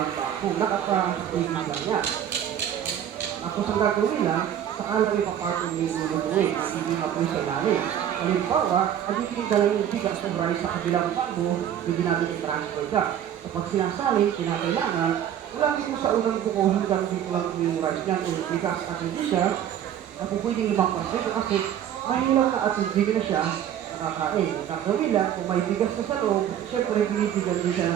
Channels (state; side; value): quieter; left; 10.1 dB